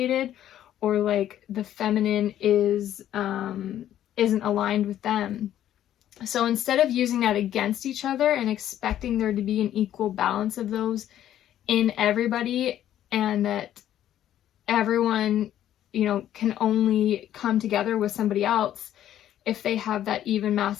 or like the feminine isn't aligned with them. So instead of using that against each other and expecting there to be an equal balance of those in everybody, and that everyone, you know, can only come together with somebody else if they have that even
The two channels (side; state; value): right; quieter; 11.6 dB